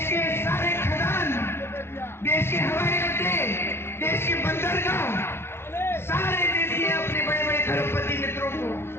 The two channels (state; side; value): late; right; 0.12 ms